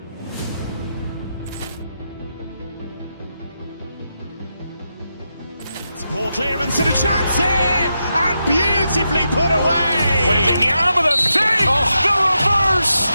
Ball clearance and a chance here, and beautifully put away. Waving the arm of the thing, the reverse,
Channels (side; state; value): both; inverted; correlation -0.86